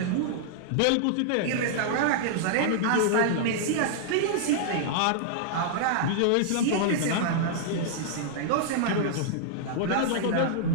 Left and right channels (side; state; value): both; different; correlation -0.01